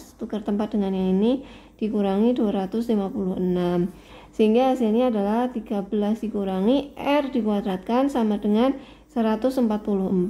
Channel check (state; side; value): identical; both; correlation 1.00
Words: tukar tempat dengan yang ini dikurangi 256. Sehingga hasilnya adalah 13 dikurangi R dikuadratkan sama dengan